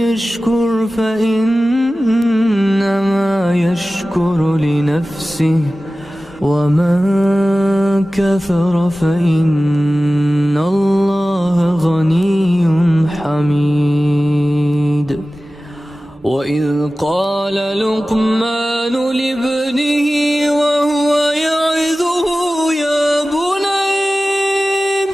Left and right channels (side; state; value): both; normal; correlation 0.96